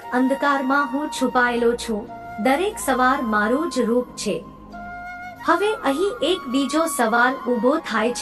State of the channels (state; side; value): identical; both; correlation 1.00